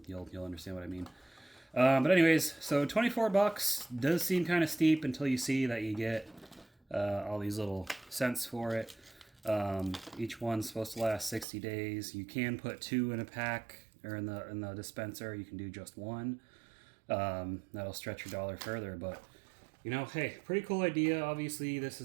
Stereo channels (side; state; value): left; drops out; at 11.5 s